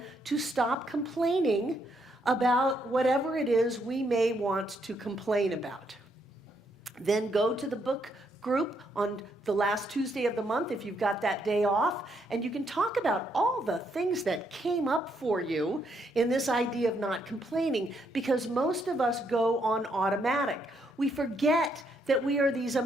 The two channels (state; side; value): normal; both; correlation 0.75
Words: to stop complaining about whatever it is we may want to complain about. Then go to the book group on the last Tuesday of the month if you've got that day off, and you can talk about all the things that came up for you in this idea of not complaining, because most of us go on automatic. We forget that we are these